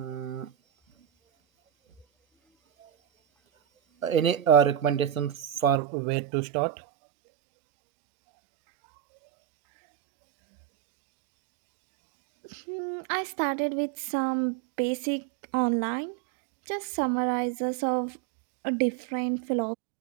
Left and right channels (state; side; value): drops out; left; at 5.8 s